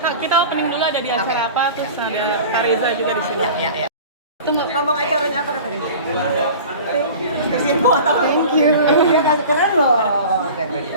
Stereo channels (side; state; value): both; inverted; correlation -0.39